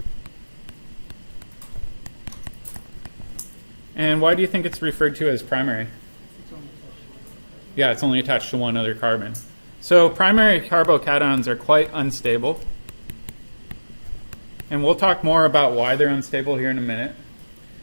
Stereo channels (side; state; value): both; inverted; correlation -1.00